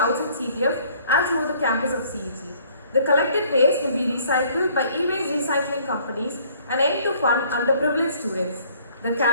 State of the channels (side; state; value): both; inverted; correlation -0.59